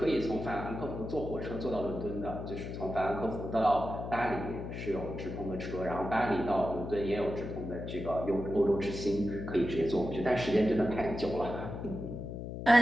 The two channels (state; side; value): noise; left; hum, 7 dB below the sound